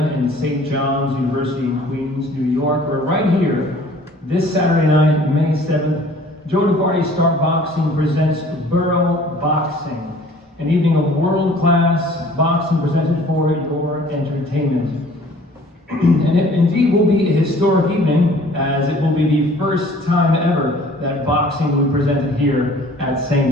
in St. John's University in Queens, New York. We're right here this Saturday night, May 7th. Joe DeVarty Star Boxing presents Borough Boxing, an evening of world-class boxing presented for your entertainment. And it indeed will be a historic evening, as it will be the first time ever that boxing will be presented here at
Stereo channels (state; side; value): normal; both; correlation 0.52